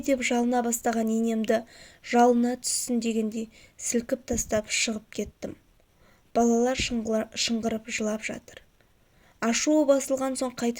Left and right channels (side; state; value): both; identical; correlation 1.00